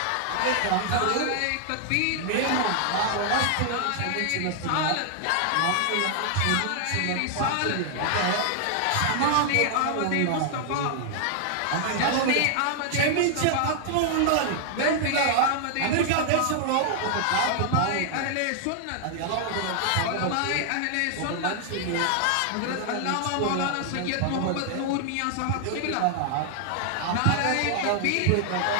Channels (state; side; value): different; both; correlation 0.00